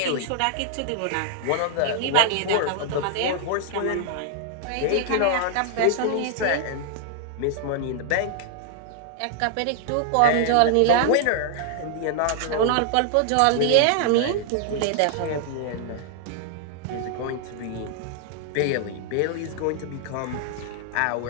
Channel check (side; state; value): both; different; correlation -0.01